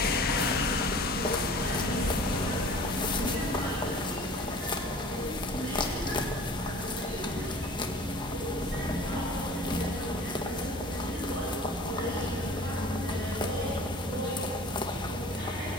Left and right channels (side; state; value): both; normal; correlation 0.45